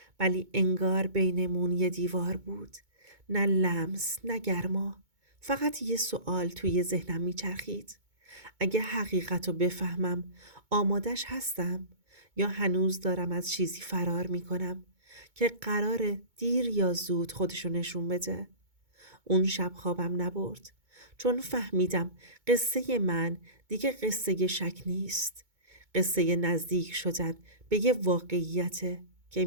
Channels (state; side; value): late; left; 2.2 ms